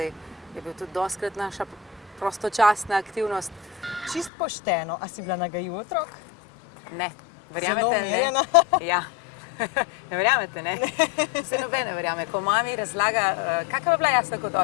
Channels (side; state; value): right; drops out; at 4.3 s